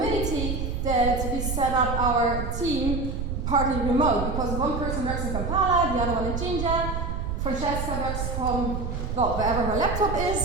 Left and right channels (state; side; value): noise; right; rumble, 3 dB below the sound